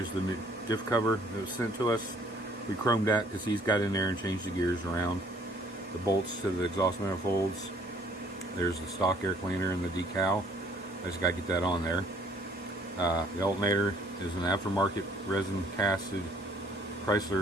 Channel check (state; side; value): normal; both; correlation 0.60